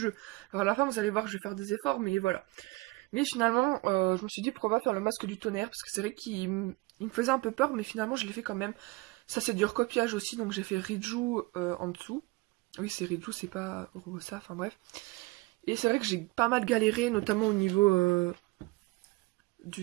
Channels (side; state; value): left; quieter; 23.3 dB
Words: Alors à la fin, vous allez voir que je vais faire des efforts, mais voilà. Mais finalement, je me suis dit pourquoi pas faire le masque du tonnerre, parce que c'est vrai qu'il me faisait un peu peur, mais finalement je l'ai fait quand même. Ça c'est du recopiage aussi, donc j'ai fait Riju en dessous. Oui, c'est Riju, c'est pas Robosa, enfin bref. Et c'est vrai que j'ai pas mal galéré, notamment au niveau